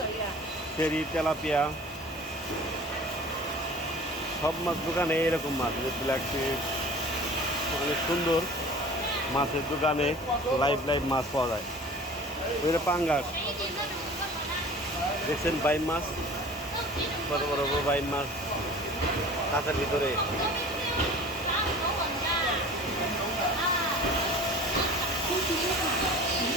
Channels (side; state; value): both; normal; correlation 0.42